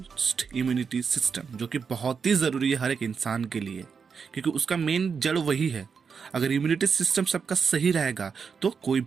इम्यूनिटी सिस्टम, जो कि बहुत ही ज़रूरी है हर एक इंसान के लिए, क्योंकि उसका मेन जड़ वही है। अगर इम्यूनिटी सिस्टम सबका सही रहेगा तो कोई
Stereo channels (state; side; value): quieter; left; 6.0 dB